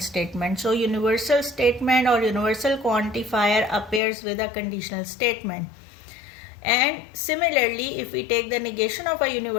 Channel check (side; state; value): right; drops out; at 4.0 s